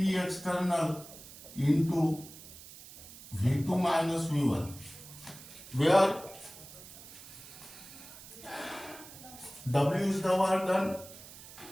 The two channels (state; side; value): noise; right; hiss, 16 dB below the sound